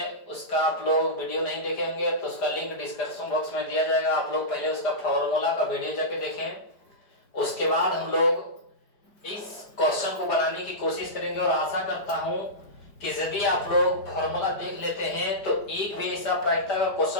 उसका आप लोग वीडियो नहीं देखे होंगे तो उसका लिंक डिस्क्रिप्शन बॉक्स में दिया जाएगा। आप लोग पहले उसका फॉर्मूला का वीडियो जाके देखें। उसके बाद हम लोग इस क्वेश्चन को बनाने की कोशिश करेंगे और आशा करता हूं कि यदि आप लोग फॉर्मूला देख लेते हैं तो एक भी ऐसा प्रायिकता का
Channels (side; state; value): right; late; 4.9 ms